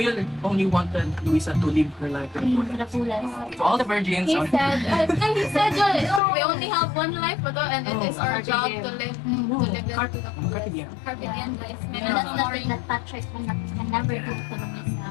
only wanted Luisa to live her life to the to the fullest. fullest. To all the virgins. He said, we only have one life, and it is our job to live it to the fullest. Carpe diem. Carpe diem, guys. And that's nothing that Patrick can never do to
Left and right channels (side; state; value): right; drops out; at 6.2 s